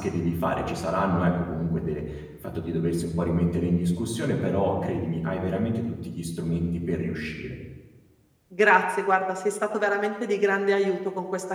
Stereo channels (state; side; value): identical; both; correlation 1.00